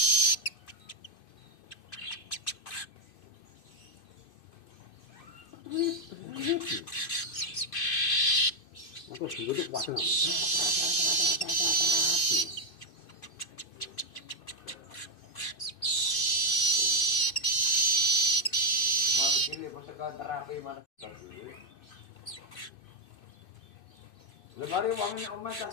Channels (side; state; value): right; late; 2.6 ms